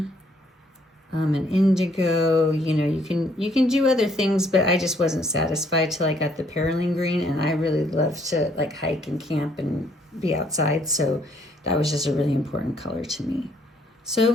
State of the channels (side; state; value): both; normal; correlation 0.66